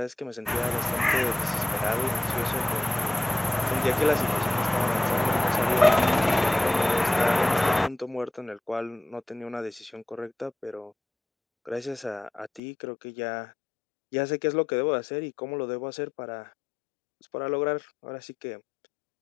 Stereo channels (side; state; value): right; drops out; at 12.6 s